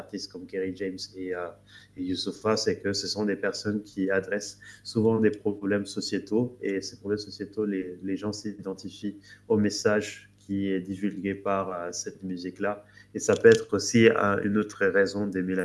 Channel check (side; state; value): both; identical; correlation 1.00